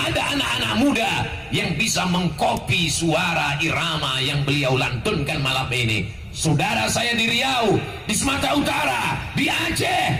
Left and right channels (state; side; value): identical; both; correlation 1.00